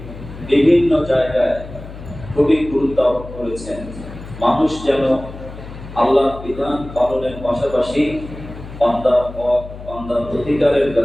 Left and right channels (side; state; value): left; noise; hum, 13 dB below the sound